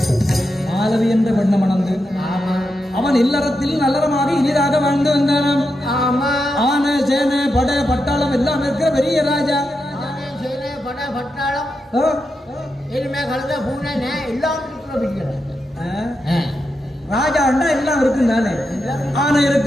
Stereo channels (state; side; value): normal; both; correlation 0.86